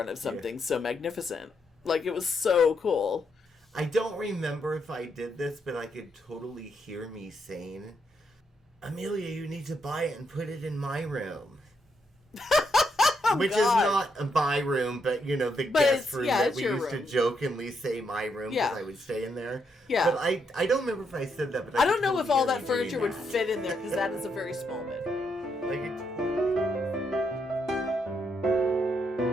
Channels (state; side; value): normal; both; correlation 0.78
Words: of something so magnificent. Like, it was so cool. I don't remember if I did this, but I could totally hear me saying, Amelia, you need to buy it and put it in my room. Which is not my room, but, the guest room that we used to jokingly say my room because I would stay in there. Yeah. But I don't remember if I said that. But I don't know if all that furniture would fit in there because that is a very small bed.